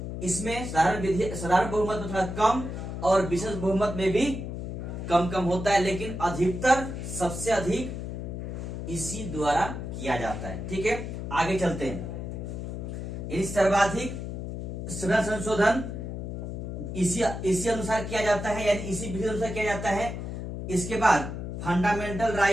इसमें साधारण बहुमत में थोड़ा कम और विशेष बहुमत में भी कम होता है, लेकिन अधिकतर सबसे अधिक इसी द्वारा किया जाता है। ठीक है, आगे चलते हैं। सर्वाधिक संविधान संशोधन इसी अनुसार किया जाता है, यानी इसी विधि अनुसार किया जाता है। इसके बाद फंडामेंटल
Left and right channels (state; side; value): noise; left; hum, 6 dB below the sound